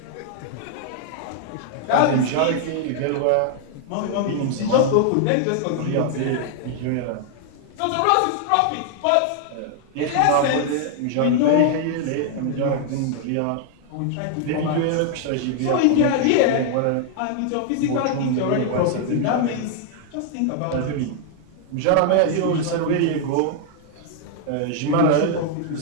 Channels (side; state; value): both; different; correlation 0.00